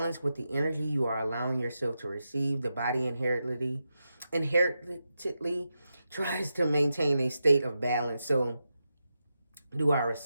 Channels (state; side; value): inverted; both; correlation -0.88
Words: with the energy you are allowing yourself to receive. The body inherently tries to maintain a state of balance. So do our